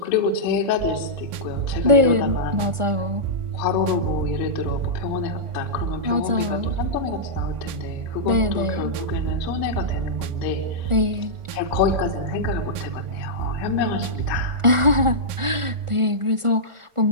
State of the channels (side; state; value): left; late; 1.4 ms